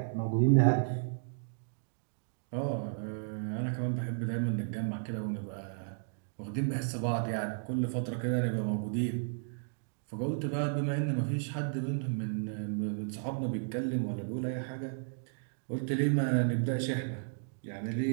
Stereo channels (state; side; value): silent; left; digital silence